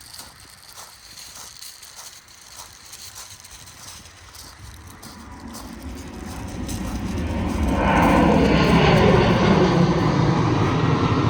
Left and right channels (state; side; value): identical; both; correlation 1.00